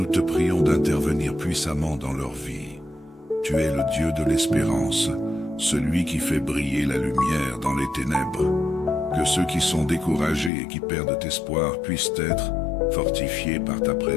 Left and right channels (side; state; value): right; drops out; at 10.5 s